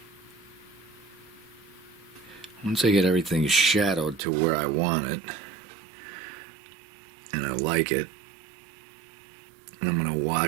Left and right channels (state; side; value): drops out; left; at 4.2 s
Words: once I get everything shadowed to where I want it and I like it, and I'm going to